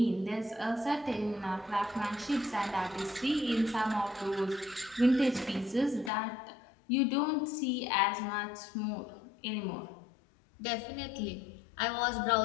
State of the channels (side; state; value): right; drops out; at 6.1 s